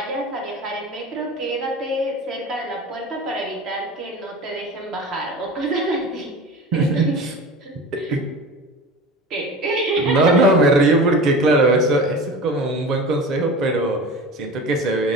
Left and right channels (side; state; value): both; normal; correlation 0.34